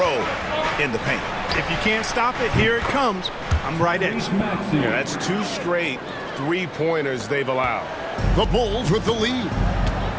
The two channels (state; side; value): identical; both; correlation 1.00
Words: in the paint. If you can't stop it, here it comes. I'm right at you. Yeah, that's 2 straight three-pointers they've allowed. The Bulls with the lead.